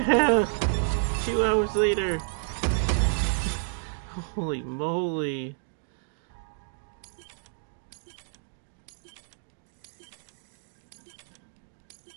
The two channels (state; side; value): silent; left; digital silence